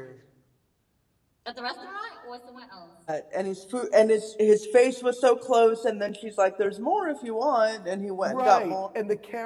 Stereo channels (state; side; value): identical; both; correlation 1.00